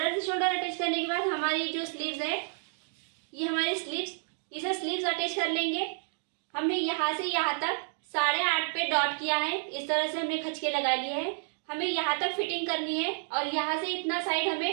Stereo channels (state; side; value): silent; left; digital silence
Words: से शोल्डर अटैच करने के बाद हमारी जो स्लीव्स है, ये हमारी स्लीव्स, इसे स्लीव्स अटैच कर लेंगे। हमने यहाँ से यहाँ तक 8.5 पे डॉट किया है। इस तरह से हमने खचके लगा लिए हैं। हमें यहाँ तक फिटिंग करनी है और यहाँ से इतना साइड